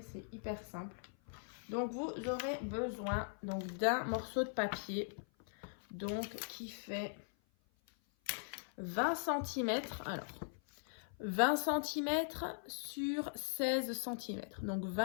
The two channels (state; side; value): silent; right; 51 dB below the other